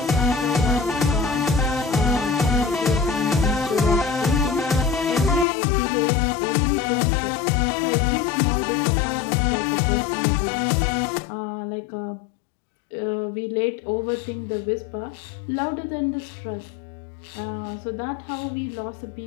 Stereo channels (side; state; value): right; drops out; at 5.5 s